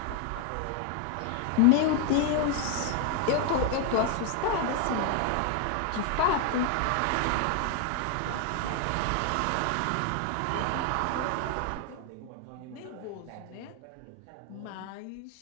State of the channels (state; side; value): different; both; correlation 0.01